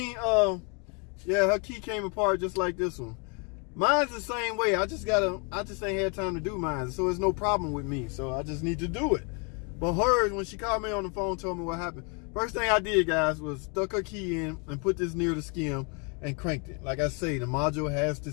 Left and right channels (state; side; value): quieter; right; 34.6 dB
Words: Yeah, her key came apart just like this one. Mine's the same way. I just ain't had time to do mine, so it's no problem with me. So I just need to do it. But hers, when she called me on the phone, told me what happened. First thing I did, guys, was stuck her key in and put this near the skim and cranked it. Like I say, the module has to